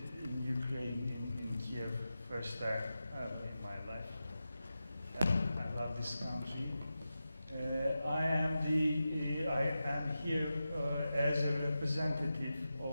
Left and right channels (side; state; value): both; inverted; correlation -0.91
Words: Ukraine, in Kiev, first time in my life. I love this country. I am here as a representative